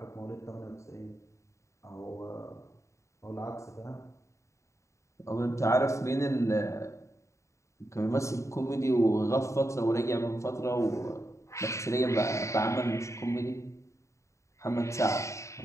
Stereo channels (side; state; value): right; late; 0.14 ms